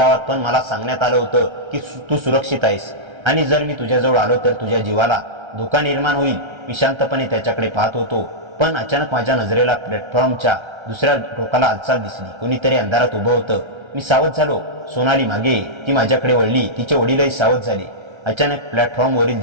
पण मला सांगण्यात आलं होतं की तू सुरक्षित आहेस आणि जर मी तुझ्याजवळ आलो तर तुझ्या जीवाला धोका निर्माण होईल. मी शांतपणे त्याच्याकडे पाहत होतो, पण अचानक माझ्या नजरेला प्लॅटफॉर्मच्या दुसऱ्या टोकाला हालचाल दिसली. कोणीतरी अंधारात उभं होतं. मी सावध झालो. सोनाली मागे. ती माझ्याकडे वळली. तिचे वडीलही सावध झाले. अचानक प्लॅटफॉर्मवरील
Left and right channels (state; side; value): late; left; 1.3 ms